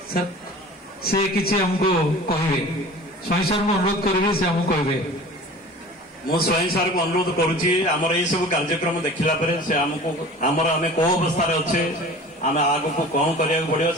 ସେ କିଛି ଆମକୁ କହିବେ। ସ୍ୱାଇଁ ସାର୍ଙ୍କୁ ଅନୁରୋଧ କରିବି, ସେ ଆମକୁ କହିବେ। ମୁଁ ସ୍ୱାଇଁ ସାର୍ଙ୍କୁ ଅନୁରୋଧ କରୁଛି, ଆମର ଏଇ ସବୁ କାର୍ଯ୍ୟକ୍ରମ ଦେଖିଲା ପରେ ସେ ଆମକୁ ଆମେ କୋଉ ଅବସ୍ଥାରେ ଅଛେ, ଆମେ ଆଗକୁ କଣ କରିବାକୁ ପଡିବ,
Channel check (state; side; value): normal; both; correlation 0.41